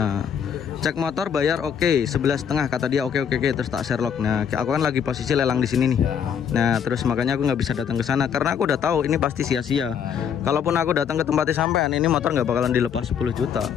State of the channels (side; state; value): right; quieter; 7.9 dB